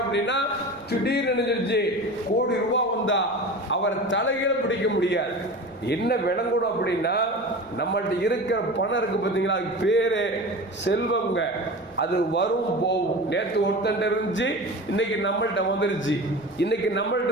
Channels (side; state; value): right; noise; rumble, 29 dB below the sound